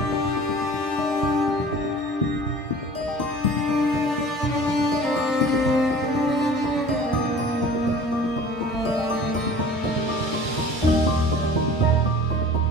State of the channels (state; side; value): normal; both; correlation 0.43